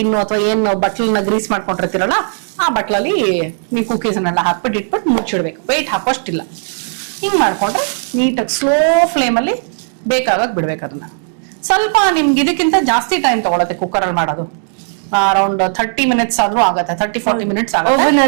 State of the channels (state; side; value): silent; left; digital silence